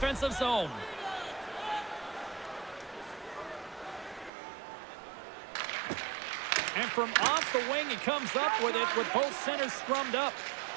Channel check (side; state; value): left; drops out; at 4.3 s